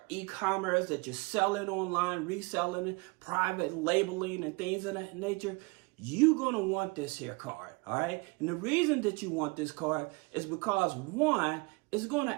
e-commerce, that you're selling online, reselling it, private labeling and things of that nature, you're going to want this here card, all right? And the reason that you want this card is because, one, it's going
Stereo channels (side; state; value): left; quieter; 27.5 dB